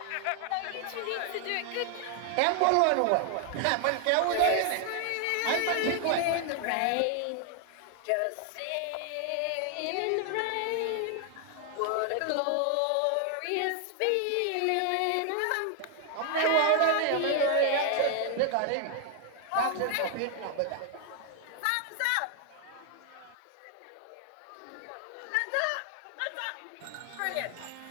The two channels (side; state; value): both; different; correlation 0.00